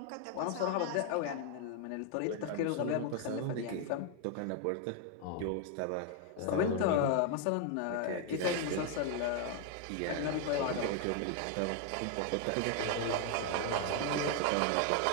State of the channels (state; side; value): different; both; correlation 0.00